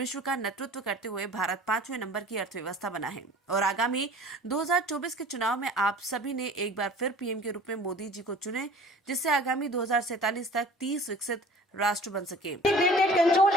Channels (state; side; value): normal; both; correlation 0.46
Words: का नेतृत्व करते हुए भारत 5वें नंबर की अर्थव्यवस्था बना है। और आगामी 2024 के चुनाव में आप सभी ने एक बार फिर पीएम के रूप में मोदी जी को चुने, जिससे आगामी 2047 तक 30 विकसित राष्ट्र बन सके। Integrated control